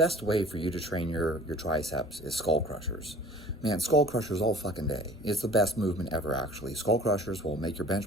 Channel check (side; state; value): both; normal; correlation 0.47